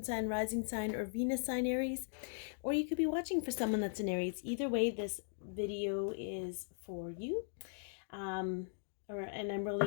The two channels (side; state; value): right; silent; digital silence